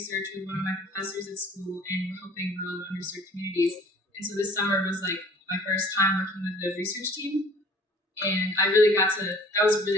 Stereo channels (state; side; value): normal; both; correlation 0.51